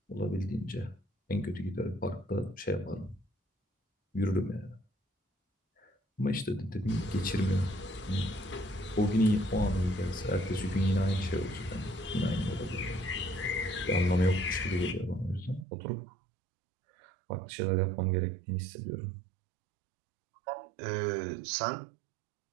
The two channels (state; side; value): drops out; left; at 15.7 s